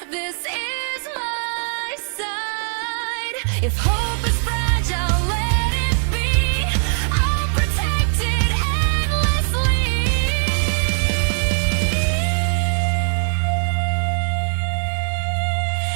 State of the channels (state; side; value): silent; left; digital silence